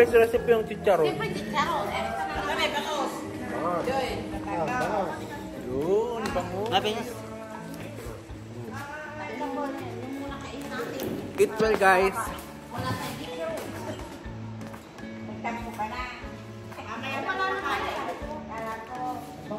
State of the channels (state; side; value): identical; both; correlation 1.00